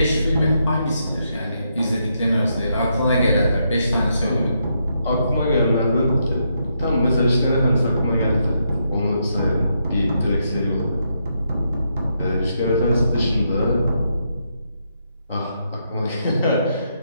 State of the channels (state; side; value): inverted; both; correlation -0.79